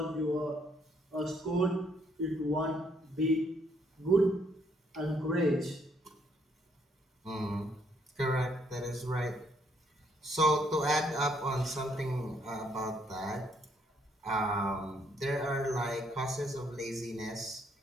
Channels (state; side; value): normal; both; correlation 0.70